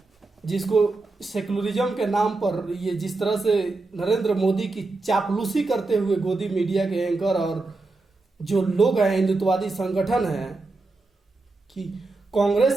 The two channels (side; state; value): left; quieter; 3.4 dB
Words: जिसको सेकुलरिज्म के नाम पर ये जिस तरह से नरेंद्र मोदी की चापलूसी करते हुए गोदी मीडिया के एंकर और जो लोग हैं हिंदुत्ववादी संगठन है कि